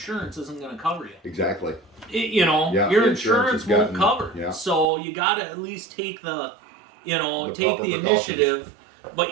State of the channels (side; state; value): left; drops out; at 4.9 s